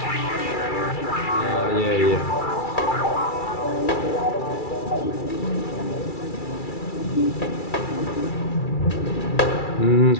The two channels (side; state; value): right; late; 2.3 ms